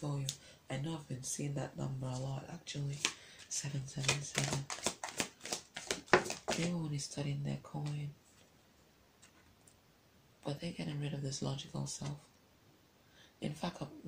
you. I know I've been seeing that number a lot actually. 777. They were only studying their coin. But they're getting rid of this logical self. In fact, at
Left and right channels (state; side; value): identical; both; correlation 1.00